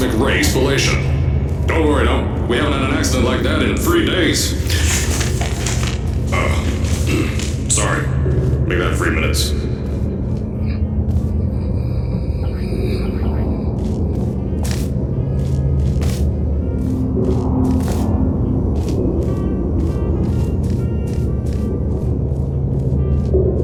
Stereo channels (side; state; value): both; identical; correlation 1.00